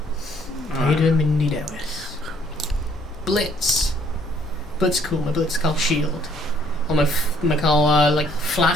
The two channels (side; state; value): both; normal; correlation 0.63